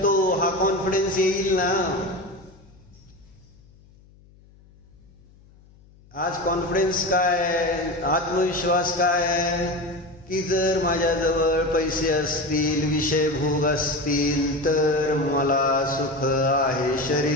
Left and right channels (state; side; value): noise; left; hum, 27 dB below the sound